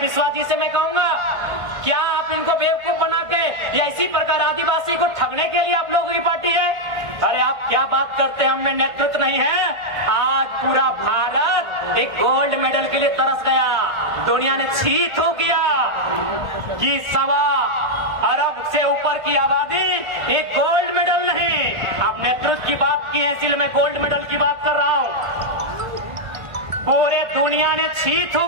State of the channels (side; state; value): left; late; 1.5 ms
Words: जी से मैं कहूंगा, क्या आप इनको बेवकूफ बना के या इसी प्रकार आदिवासी को ठगने के लिए आप लोगों की पार्टी है? अरे आप क्या बात करते हैं, हम में नेतृत्व नहीं है। आज पूरा भारत एक गोल्ड मेडल के लिए तरस गया, दुनिया ने छी थू किया कि 1.25 अरब से ऊपर की आबादी, एक गोल्ड मेडल नहीं। आप नेतृत्व की बात की है, इसलिए मैं गोल्ड मेडल की बात कर रहा हूं। पूरे दुनिया ने छी थू